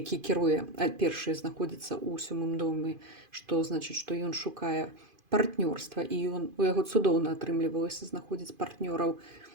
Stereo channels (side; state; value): left; late; 2.5 ms